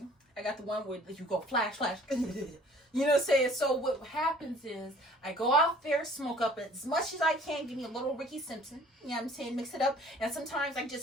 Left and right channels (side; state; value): both; normal; correlation 0.53